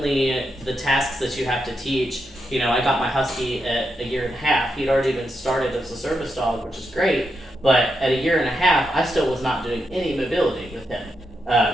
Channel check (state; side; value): normal; both; correlation 0.84